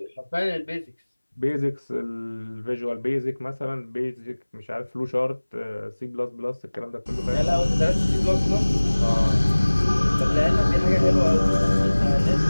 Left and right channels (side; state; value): both; inverted; correlation -1.00